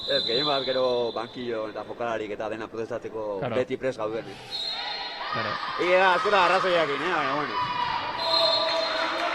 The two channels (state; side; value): identical; both; correlation 1.00